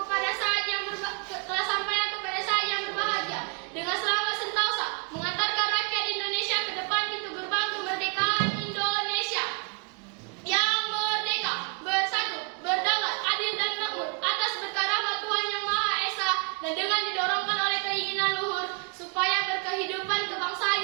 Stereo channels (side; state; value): left; quieter; 35.3 dB